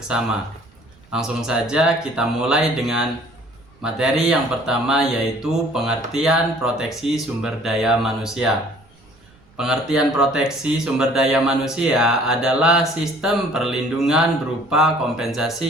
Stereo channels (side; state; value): right; noise; rumble, 30 dB below the sound